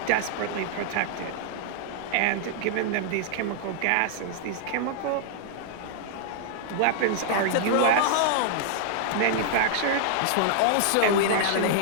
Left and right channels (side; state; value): both; different; correlation -0.01